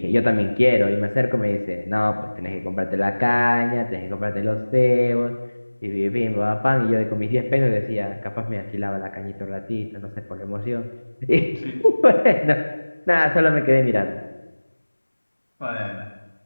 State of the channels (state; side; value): inverted; both; correlation -1.00